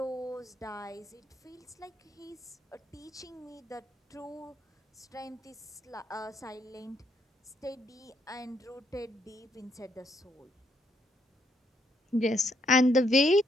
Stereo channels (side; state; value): both; normal; correlation 0.73